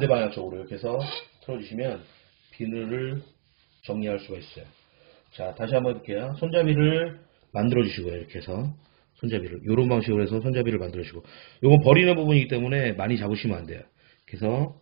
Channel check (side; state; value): left; silent; digital silence